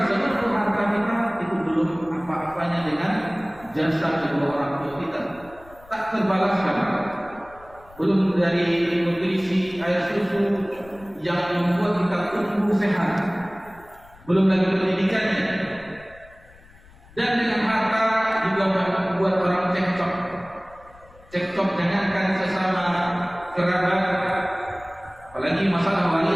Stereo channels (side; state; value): left; noise; rumble, 24 dB below the sound